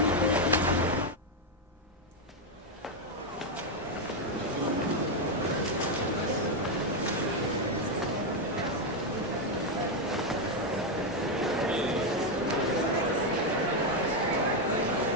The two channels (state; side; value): normal; both; correlation 0.04